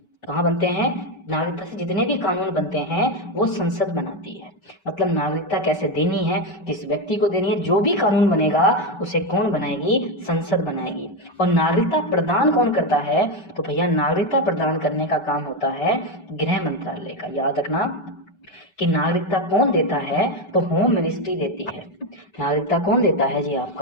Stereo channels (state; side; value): late; right; 5.0 ms